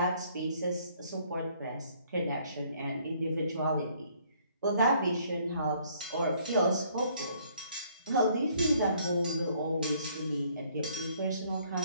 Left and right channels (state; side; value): inverted; both; correlation -0.63